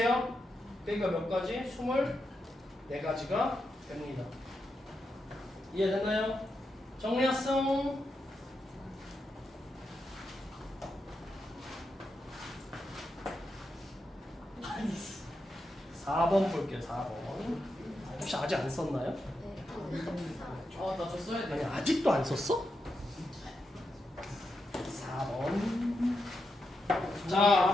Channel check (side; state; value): both; normal; correlation 0.86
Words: 그러니까 몇 가지? 24가지가 됩니다. 이해됐나요? 정리했어. 4번 볼게요. 4번. 혹시 아직 안 썼나요? 나 저 써야 아니 돼. 아직도 안 썼어? 4번. 자